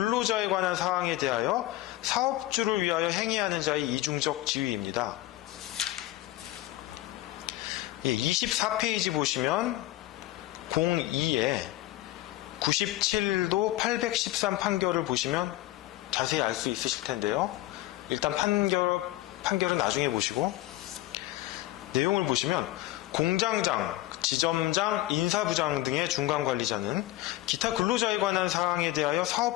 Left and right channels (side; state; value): right; quieter; 16.6 dB